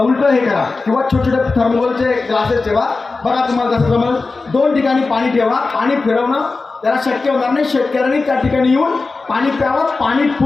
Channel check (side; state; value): right; quieter; 3.9 dB